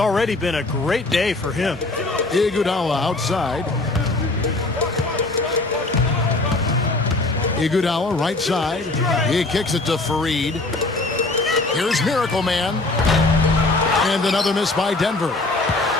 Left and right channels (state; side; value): quieter; right; 3.1 dB